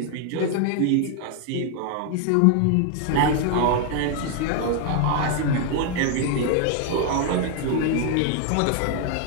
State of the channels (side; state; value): both; different; correlation 0.00